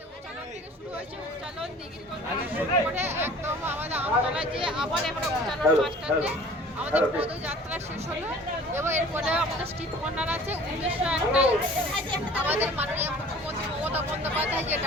উচ্চালন থেকে শুরু হয়েছে। উচ্চালন দিঘির কোণ থেকে শুরু করে একদম আমাদের আমতলায় যে আবার এখন উচ্চালন বাসস্ট্যান্ডে আমাদের পদযাত্রা শেষ হলো এবং এরপরে আমাদের স্ট্রিট কর্নার আছে। 1901টায় আমাদের মাননীয় মুখ্যমন্ত্রী মমতা বন্দ্যোপাধ্যায় যে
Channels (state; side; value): normal; both; correlation 0.47